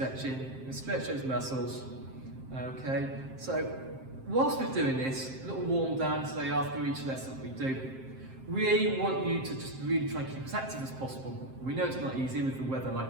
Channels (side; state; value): left; late; 7.6 ms